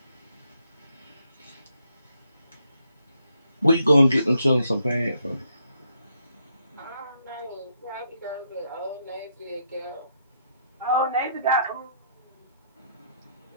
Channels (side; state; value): both; inverted; correlation -0.75